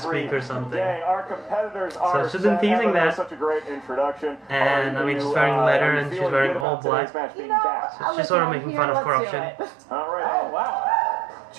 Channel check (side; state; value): left; drops out; at 6.7 s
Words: week or something. Dang, our competitors are she's been teasing Emma, that. Such a great introduction. And, I mean, she's wearing leather and she's wearing all black. So she's sort of making fun of corruption. All right. Oh, wow.